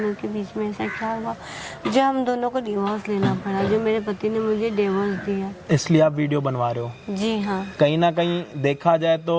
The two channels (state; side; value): identical; both; correlation 1.00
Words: के बीच में ऐसा क्या हुआ, जो हम दोनों को डिवोर्स लेना पड़ा, जो मेरे पति ने मुझे डिवोर्स दिया। इसलिए आप वीडियो बनवा रहे हो? जी हाँ। कहीं ना कहीं देखा जाए